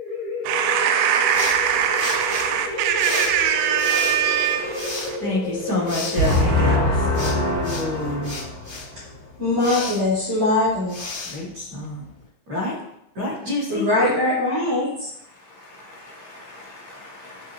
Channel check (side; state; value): left; late; 15 ms